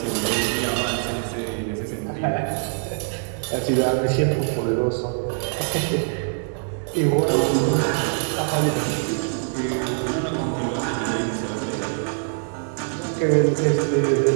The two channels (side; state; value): left; silent; 63 dB below the other